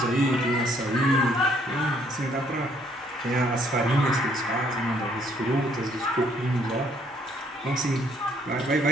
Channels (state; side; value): normal; both; correlation 0.66